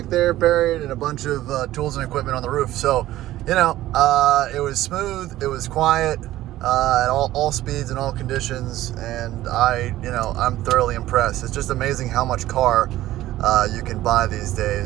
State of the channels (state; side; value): quieter; left; 15.0 dB